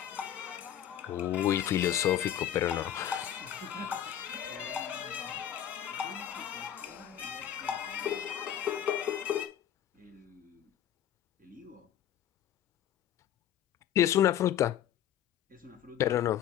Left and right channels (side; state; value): right; quieter; 10.6 dB